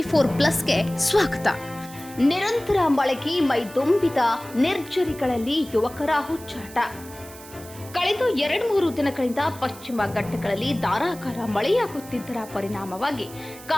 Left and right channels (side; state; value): right; noise; hiss, 18 dB below the sound